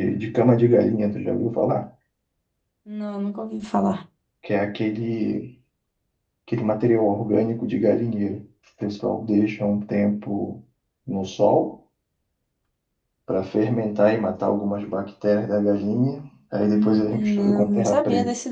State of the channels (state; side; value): identical; both; correlation 1.00